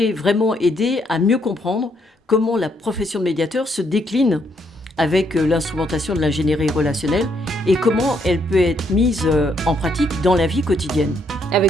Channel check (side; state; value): both; normal; correlation 0.73